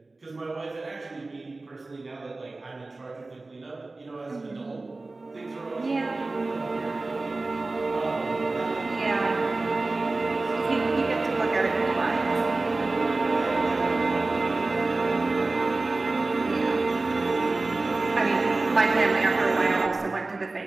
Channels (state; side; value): quieter; left; 3.3 dB